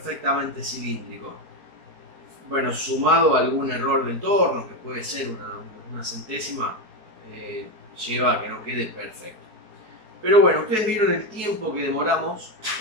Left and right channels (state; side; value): late; left; 4.6 ms